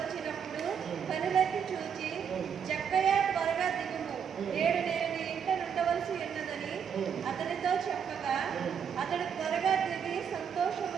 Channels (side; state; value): left; quieter; 7.5 dB